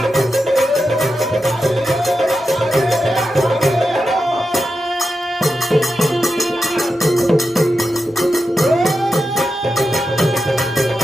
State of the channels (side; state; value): both; normal; correlation 0.89